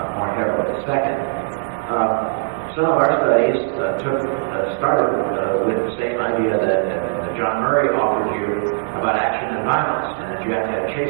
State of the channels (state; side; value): silent; left; digital silence